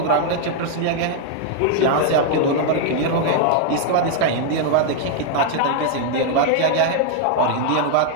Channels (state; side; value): different; both; correlation 0.00